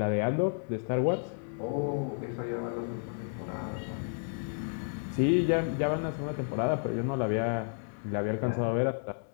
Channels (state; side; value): silent; right; digital silence